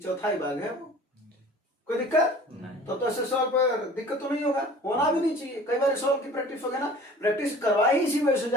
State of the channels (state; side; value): normal; both; correlation 0.45